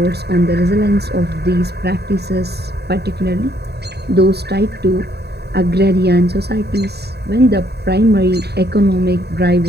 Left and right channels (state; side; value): late; left; 0.48 ms